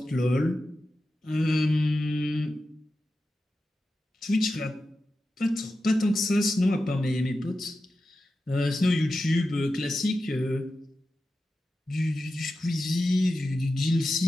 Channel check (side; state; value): both; normal; correlation 0.91